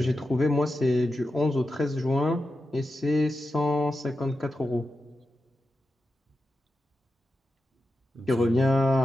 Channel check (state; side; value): normal; both; correlation 0.90